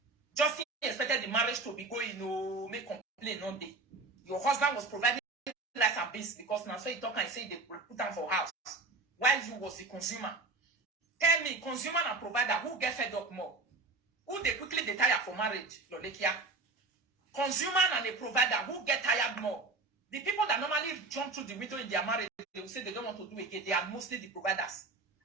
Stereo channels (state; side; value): quieter; left; 3.6 dB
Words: Justin expected the marriage to be going, make complaint one day. Your husband was providing rice and beans because now so he talk and say they put them for house. While you was the consumer. Tell me, consumer and provider, who get fed up more? Who they quickly they tire for marriage, Lolekia? Consumer and a provider, who get tired more? The people that normally jump through the window in their marriage, they will say they don't want to do it again. They are mostly the providers.